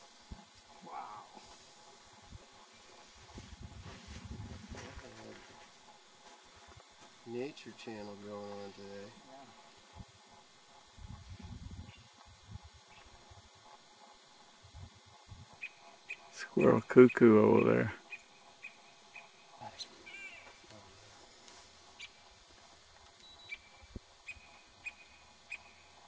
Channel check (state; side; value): identical; both; correlation 1.00